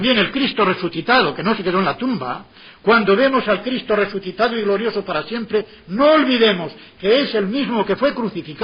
el Cristo resucitado, que no se quedó en la tumba. Cuando vemos al Cristo resucitado y glorioso para siempre, no olvidemos que es el mismo que fue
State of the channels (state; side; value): identical; both; correlation 1.00